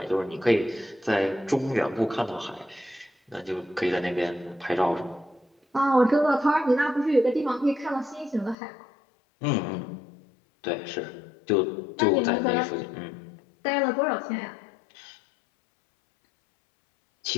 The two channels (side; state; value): right; drops out; at 8.6 s